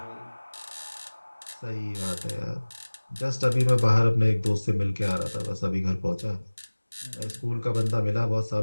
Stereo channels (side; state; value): both; inverted; correlation -1.00